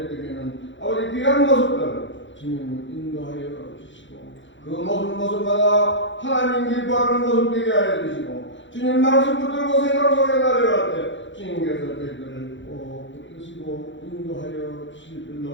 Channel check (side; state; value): right; late; 0.54 ms